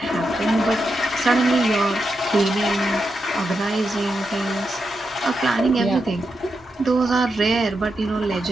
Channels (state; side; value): normal; both; correlation 0.86